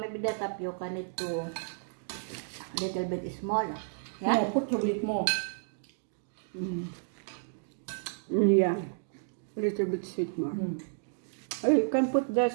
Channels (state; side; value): silent; left; digital silence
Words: the tapioca need to little bit small. Yeah? No, put a bit more. Yeah. A little bit sweet more. Oh, you can put the